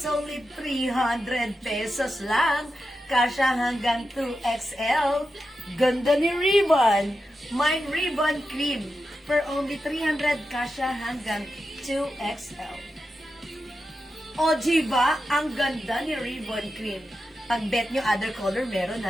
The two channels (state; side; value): normal; both; correlation 0.90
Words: only 300 pesos lang. Kasya hanggang 2XL. Ganda ni Ribbon. Mine Ribbon cream. For only 300, kasya hanggang 2XL. O, diba? Ang ganda ni Ribbon Cream. Pag bet nyo, other color, meron